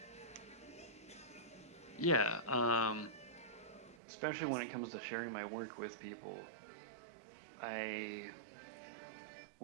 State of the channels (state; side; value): drops out; left; at 4.0 s